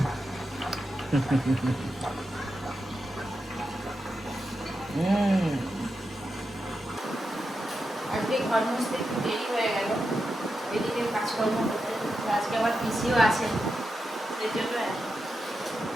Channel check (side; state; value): both; normal; correlation 0.88